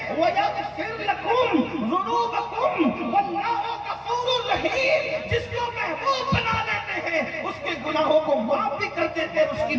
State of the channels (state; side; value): identical; both; correlation 1.00